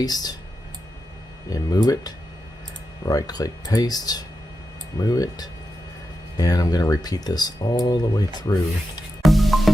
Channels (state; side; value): normal; both; correlation 0.89